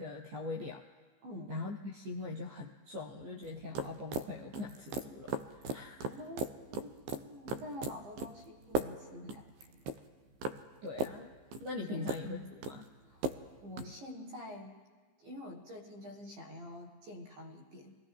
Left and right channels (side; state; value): left; late; 15 ms